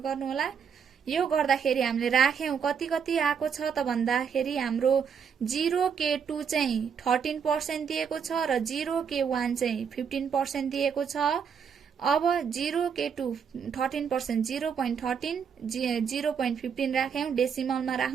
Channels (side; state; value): left; quieter; 6.9 dB